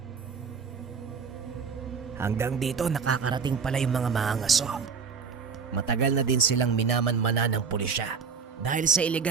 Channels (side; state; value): left; quieter; 5.7 dB